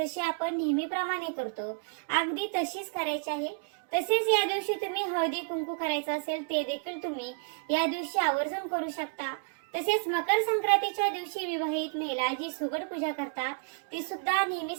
आपण नेहमीप्रमाणे करतो अगदी तशीच करायची आहे. तसेच या दिवशी तुम्ही हळदी कुंकू करायचं असेल ते देखील तुम्ही या दिवशी आवर्जून करू शकता. तसेच मकर संक्रांतीच्या दिवशी विवाहित महिला जी सुगड पूजा करतात ती सुद्धा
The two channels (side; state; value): left; quieter; 36.5 dB